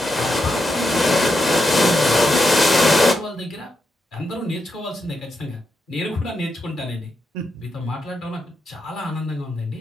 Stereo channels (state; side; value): normal; both; correlation 0.84